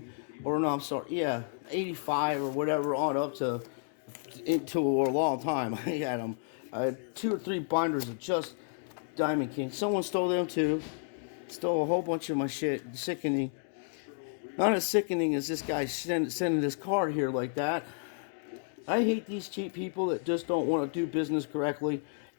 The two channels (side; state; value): right; silent; digital silence